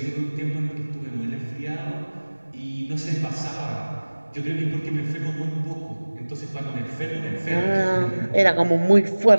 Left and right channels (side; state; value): both; inverted; correlation -1.00